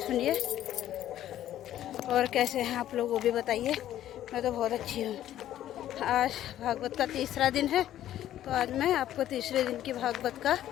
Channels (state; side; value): quieter; right; 12.3 dB